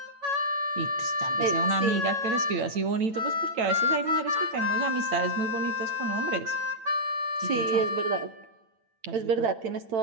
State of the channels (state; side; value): late; left; 8.9 ms